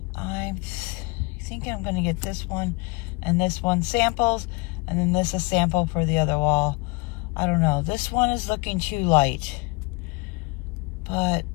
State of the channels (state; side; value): quieter; right; 26.3 dB